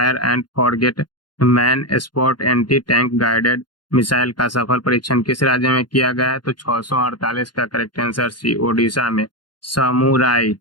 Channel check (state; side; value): late; right; 0.71 ms